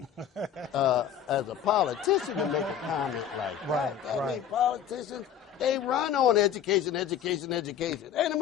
as a politician to make a comment like that. I mean, politicians, they run on education. Ain't it,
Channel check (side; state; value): right; quieter; 9.0 dB